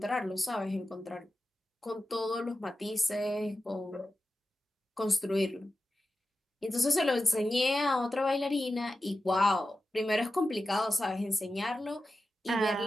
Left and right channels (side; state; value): both; normal; correlation 0.92